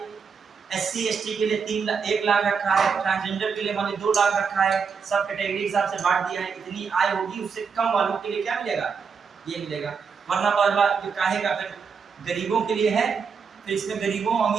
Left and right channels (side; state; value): left; quieter; 5.9 dB